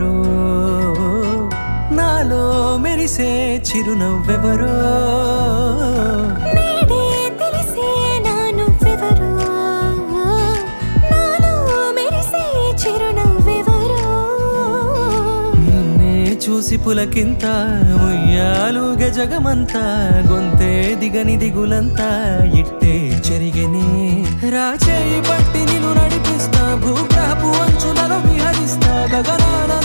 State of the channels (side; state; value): both; inverted; correlation -1.00